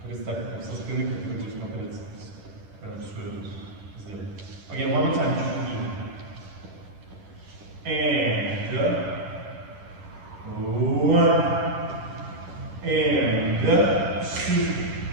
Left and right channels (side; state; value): left; late; 10 ms